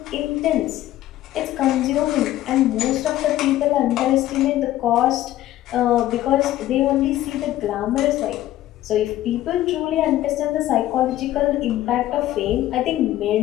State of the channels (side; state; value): right; quieter; 14.1 dB